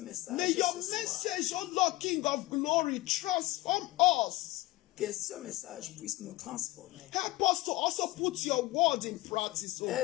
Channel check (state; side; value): quieter; right; 18.9 dB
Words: May your message, oh Lord, King of glory, transform us. Que ce message puisse nous transformer. Help us to also put your word in practice, oh